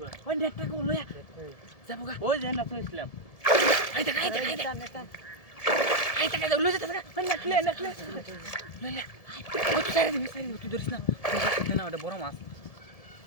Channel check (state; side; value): late; right; 1.7 ms